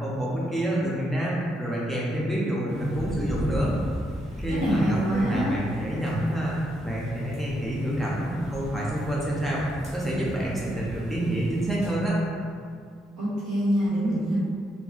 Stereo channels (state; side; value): normal; both; correlation 0.80